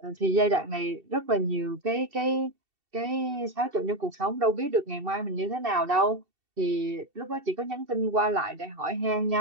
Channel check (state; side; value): late; left; 2.7 ms